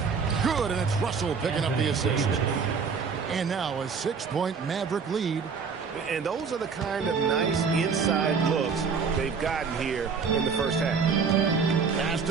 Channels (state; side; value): quieter; left; 5.6 dB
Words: Good, and it's Russell picking up the assist. And now a 6-point Maverick lead. And those are the kind of nice inside looks they've gotten here in the first half. Pass